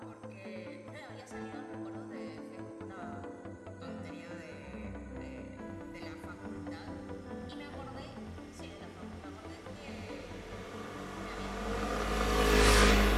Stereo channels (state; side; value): identical; both; correlation 1.00